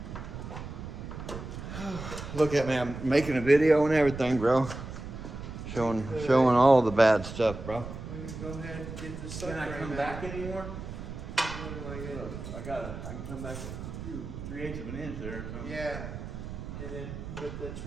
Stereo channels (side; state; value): right; noise; rumble, 9 dB below the sound